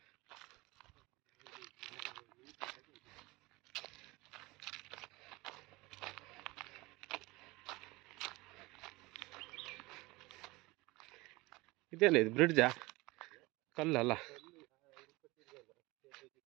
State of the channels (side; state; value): left; quieter; 22.2 dB